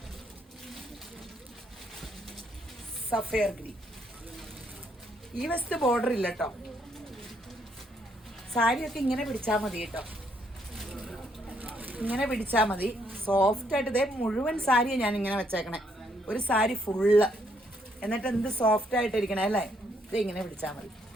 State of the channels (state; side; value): normal; both; correlation 0.72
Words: Sapphire green. ഈ വശത്ത് ബോർഡർ ഇല്ല കേട്ടോ. സാരിയൊക്കെ ഇങ്ങനെ പിടിച്ചാൽ മതി കേട്ടോ. ഇങ്ങനെ പിടിച്ചാൽ മതി. സോഫ്റ്റായിട്ട്. ഇതേ മുഴുവൻ സാരിയാണ് ഞാൻ ഇങ്ങനെ വെച്ചേക്കണേ. ഒരു സാരി ഫുള്ള്. എന്നിട്ട് എന്ത് സോഫ്റ്റ് ആയിട്ടിരിക്കണേ അല്ലേ. ഇത് ഇങ്ങനെ പിടിച്ചാൽ മതി.